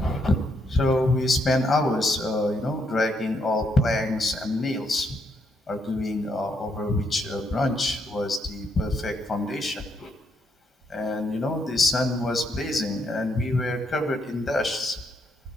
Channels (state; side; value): normal; both; correlation 0.75